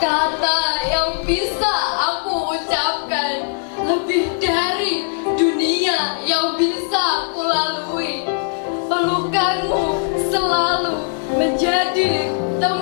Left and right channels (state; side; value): silent; right; 66 dB below the other